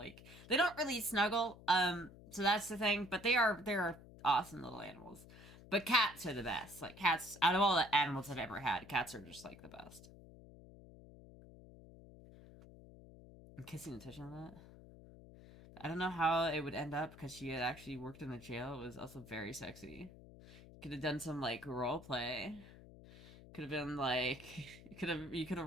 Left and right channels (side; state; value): left; noise; hum, 19 dB below the sound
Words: they don't really snuggle. So that's the thing. But they're awesome little animals. But cats are the best. Like cats, out of all the animals I've ever had, cats are just like the best. I'm kissing and touching on that. I don't know how it would end up because she had actually worked in a jail. It was also very sexy. Could have done some like role play. Could have been like you could